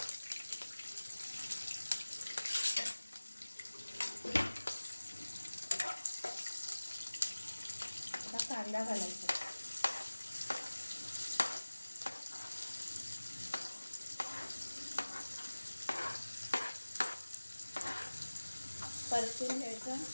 आता कांदा घालायचा, परतून घ्यायचा,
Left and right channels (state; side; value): inverted; both; correlation -1.00